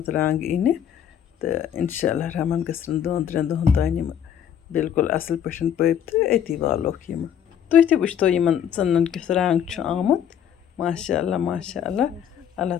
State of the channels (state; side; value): quieter; right; 9.0 dB